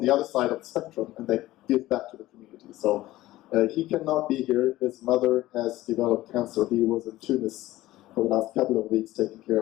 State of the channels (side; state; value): right; quieter; 16.5 dB